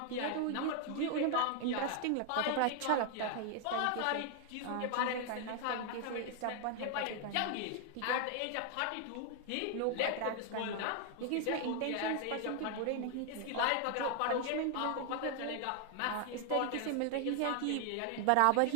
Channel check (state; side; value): different; both; correlation 0.00